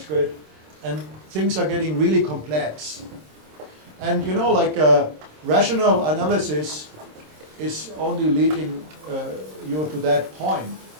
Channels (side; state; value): left; late; 26 ms